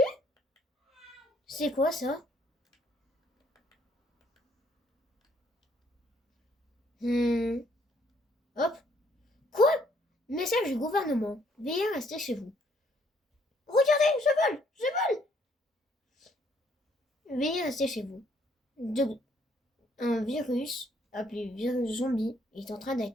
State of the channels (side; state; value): both; normal; correlation 0.67